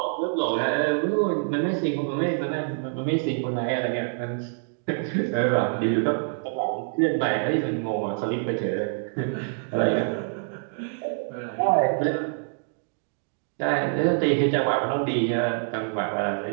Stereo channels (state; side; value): silent; left; digital silence